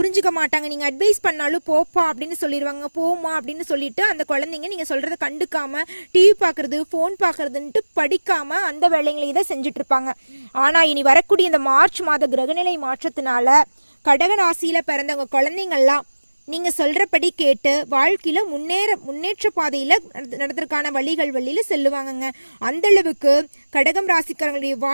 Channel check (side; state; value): both; inverted; correlation -1.00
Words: மாட்டாங்க, நீங்க அட்வைஸ் பண்ணாலும் போப்பா அப்படின்னு சொல்லிடுவாங்க, போமா அப்படின்னு சொல்லிட்டு அந்த குழந்தைங்க நீங்க சொல்றதை கண்டுக்காம டிவி பாக்குறது, போன் பாக்குறதுன்ட்டு படிக்காம அந்த வேலைங்களையும் தான் செஞ்சுட்டு இருப்பாங்க. ஆனா இனி வரக்கூடிய இந்த மார்ச் மாத கிரகநிலை மாற்றத்தினால கடக ராசியில பிறந்தவங்க குழந்தைங்கள்லாம் நீங்க சொல்றபடி கேட்டு வாழ்க்கையில முன்னேற்ற பாதையில நடத்துறதுக்கான வழியில செல்லுவாங்கங்க. அந்த அளவுக்கு கடகம் ராசிக்காரங்களுடைய